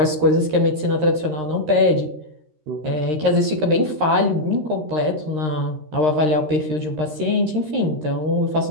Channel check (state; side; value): late; left; 13 ms